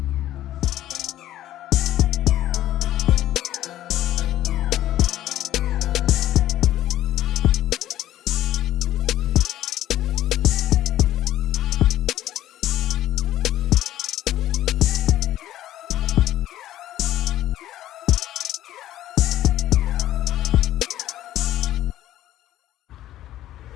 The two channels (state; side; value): quieter; right; 13.4 dB